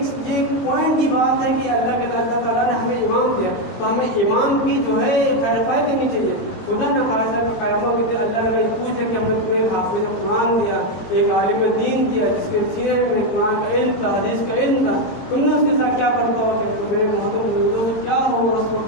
پوائنٹ کی بات ہے کہ اللہ تعالیٰ نے ہمیں امام دیا، تو ہمیں امام کی جو ہے خیر خواہی کرنی چاہیے۔ خدا نہ خاصا کہ قیامت کے دن اللہ نے پوچھ لے کہ ہم نے تمہیں حافظ قرآن دیا، ایک عالم دین دیا جس کے سینے میں قرآن کا علم تھا، حدیث کا علم تھا، تم نے اس کے ساتھ کیا کرتا ہو؟ تو میرے محمد کیا ہوگا اس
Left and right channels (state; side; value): late; right; 22 ms